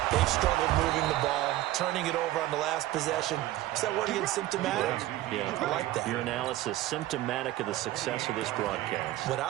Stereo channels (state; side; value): quieter; left; 15.6 dB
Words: they've struggled moving the ball, turning it over on the last possession. Is that word again, symptomatic? Yeah. I like that. Your analysis, symptomatic of the success of this broadcast. What I